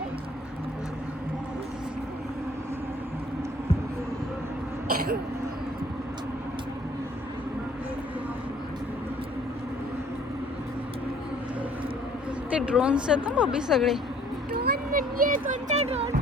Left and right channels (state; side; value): normal; both; correlation 0.57